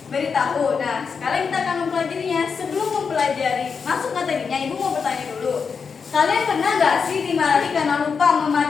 beritahu. Nah, sekarang kita akan mempelajarinya. Sebelum mempelajari masuk materinya, Ibu mau bertanya dulu. Kalian pernah nggak sih dimarahi karena lupa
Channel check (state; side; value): quieter; right; 5.7 dB